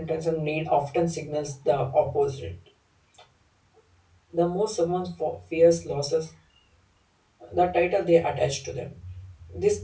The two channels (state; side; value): identical; both; correlation 1.00